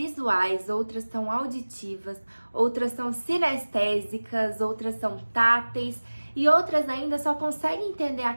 outras são auditivas, outras são sinestésicas, outras são táteis e outras ainda só conseguem entender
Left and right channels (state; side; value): inverted; both; correlation -1.00